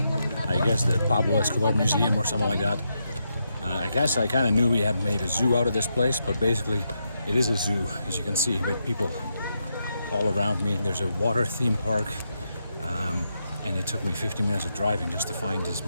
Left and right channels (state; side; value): inverted; both; correlation -0.83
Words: I guess, the Pablo Escobar Museum or something like that. I guess I kind of knew we had made a zoo out of this place, but basically It is a zoo, as you can see, with people all around me. There's a water theme park, and it took me 50 minutes of driving just to find this